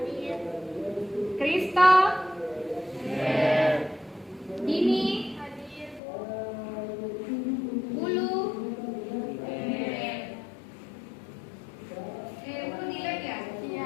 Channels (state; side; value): drops out; right; at 6.0 s